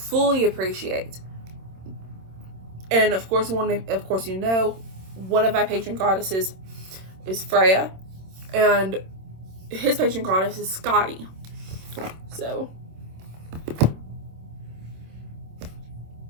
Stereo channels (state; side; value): late; left; 26 ms